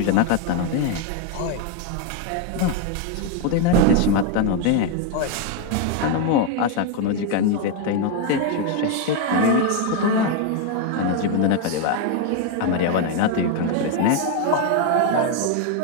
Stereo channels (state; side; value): different; both; correlation 0.01